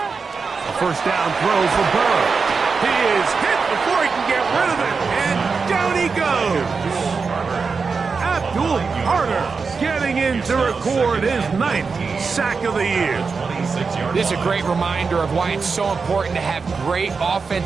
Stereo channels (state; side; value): quieter; left; 4.9 dB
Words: A first down throw for Burrow. He is hit before he can get rid of it, and down he goes. Abdul Carter getting in to record his 9th sack of the year. This is a great reminder of why it's so important to have great